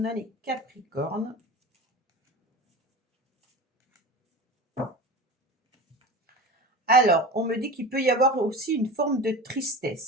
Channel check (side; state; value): both; normal; correlation 0.31